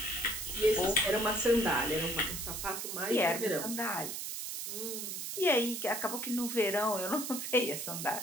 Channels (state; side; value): noise; right; hiss, 5 dB below the sound